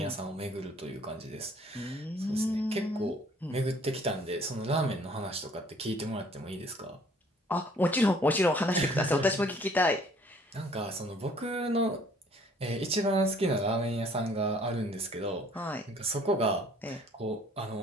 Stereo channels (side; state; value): both; normal; correlation 0.57